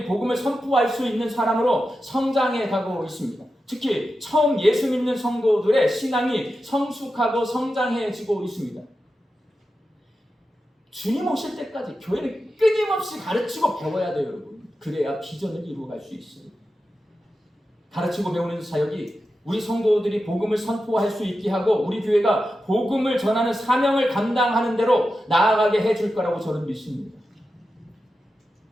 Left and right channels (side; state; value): both; normal; correlation 0.91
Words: 복음을 선포할 수 있는 사람으로 성장해 가고 있습니다. 특히 처음 예수 믿는 성도들의 신앙이 성숙하고 성장해지고 있습니다. 주님 오실 때까지 교회는 끊임없이 가르치고 배워야 돼요, 여러분. 그래야 비전을 이루어갈 수 있어요. 가르치고 배우는 사역이 우리 성도들이 복음을 선포할 수 있게 하고 우리 교회가 복음을 전하는 사명을 감당하는 대로 나아가게 해줄 거라고 저는 믿습니다.